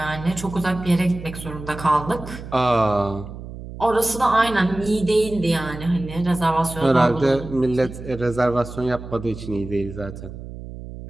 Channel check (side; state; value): right; noise; hum, 12 dB below the sound